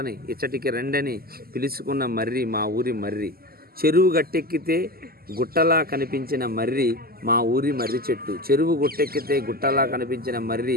ఊరి మర్రి. చెరువు గట్టెక్కితే గుట్టలా కనిపించిన మర్రి మా ఊరి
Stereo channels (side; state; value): left; late; 0.44 ms